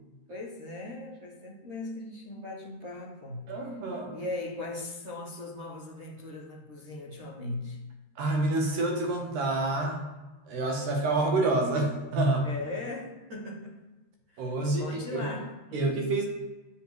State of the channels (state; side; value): late; left; 13 ms